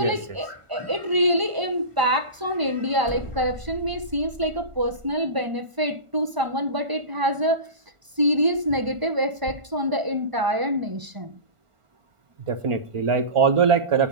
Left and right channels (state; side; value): late; left; 1.0 ms